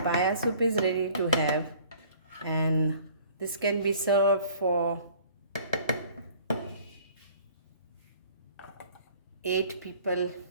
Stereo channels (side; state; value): both; inverted; correlation -0.52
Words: soup is ready to have, and this can be served for 8 people